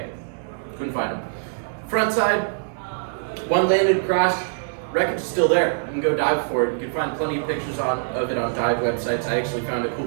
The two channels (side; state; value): left; silent; digital silence